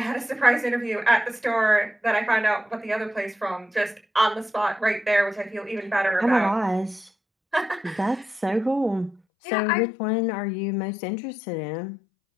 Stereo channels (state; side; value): drops out; right; at 9.2 s